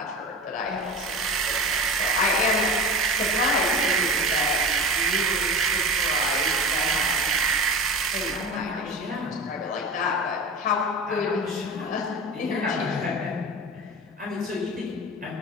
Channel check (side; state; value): both; normal; correlation 0.31